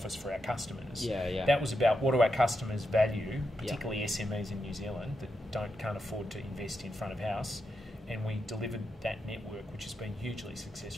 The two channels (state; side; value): normal; both; correlation 0.85